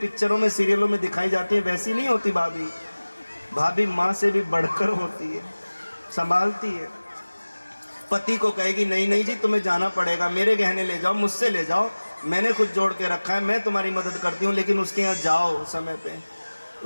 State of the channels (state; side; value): inverted; both; correlation -1.00